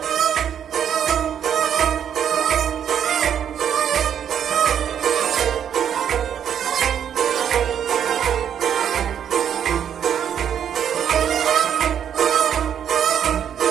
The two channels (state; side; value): quieter; left; 8.9 dB